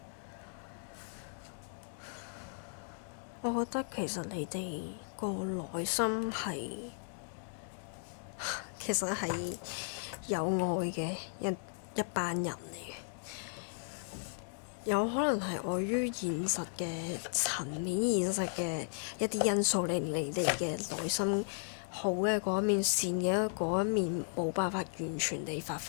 我覺得其實你哋個內心係其實係有愛嘅一班人嚟嘅，有可能係礙於現實嘅層面、現實嘅一啲因素，令你哋嘅內心好嘅嗰一面、善嘅嗰一面冇辦法完全地發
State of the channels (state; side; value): silent; right; digital silence